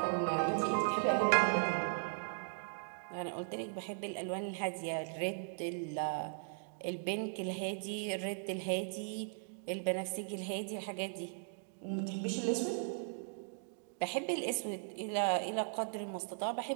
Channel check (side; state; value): left; silent; digital silence